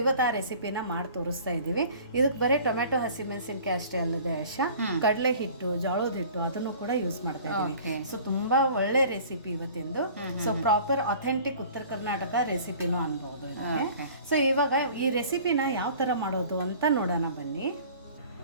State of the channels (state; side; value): inverted; both; correlation -0.46